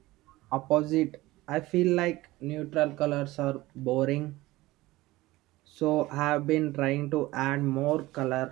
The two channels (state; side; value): quieter; left; 18.7 dB